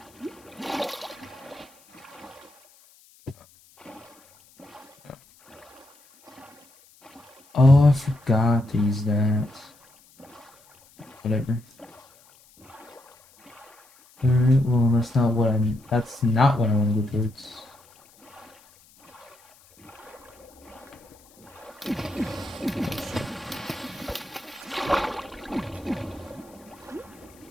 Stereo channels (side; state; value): left; noise; hiss, 28 dB below the sound